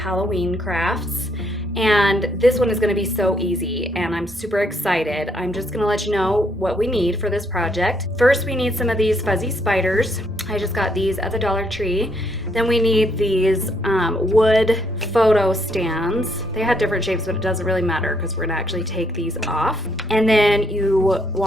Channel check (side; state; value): both; normal; correlation 0.72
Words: crafts. And this one is going to be so easy and I'm super excited. I'm just going to let you know what we need for this project. First, we need some of these fuzzy spiders. I just got these at the Dollar Tree. Then we need these wood photo stands. They had different shapes, but it doesn't really matter because we're gonna actually take these off. And then you